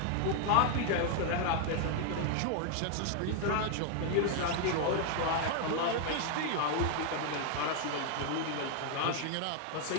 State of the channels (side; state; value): both; different; correlation 0.00